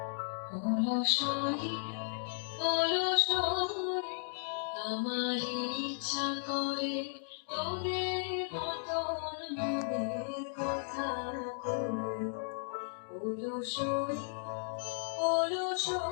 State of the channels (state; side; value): silent; right; digital silence